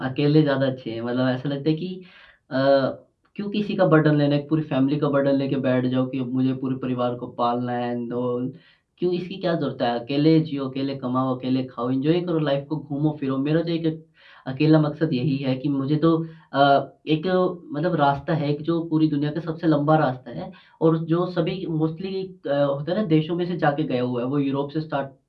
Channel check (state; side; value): identical; both; correlation 1.00